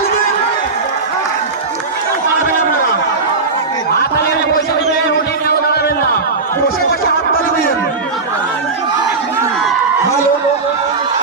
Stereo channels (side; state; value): left; quieter; 4.1 dB